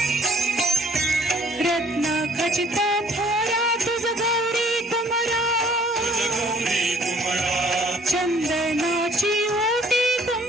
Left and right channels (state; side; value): normal; both; correlation 0.57